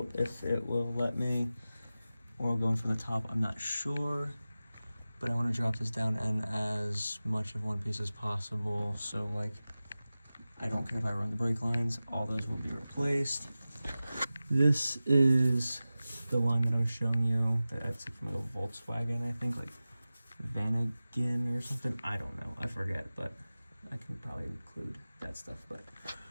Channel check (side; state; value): both; inverted; correlation -0.96